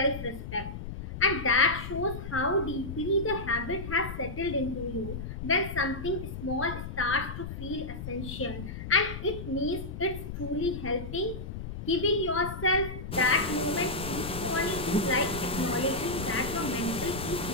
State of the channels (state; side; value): noise; left; rumble, 8 dB below the sound